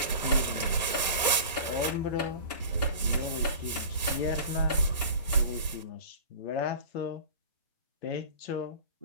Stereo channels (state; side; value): inverted; both; correlation -0.37